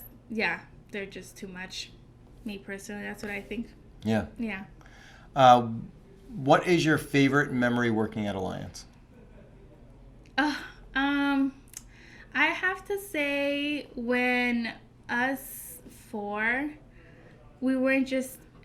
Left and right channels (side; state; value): both; identical; correlation 1.00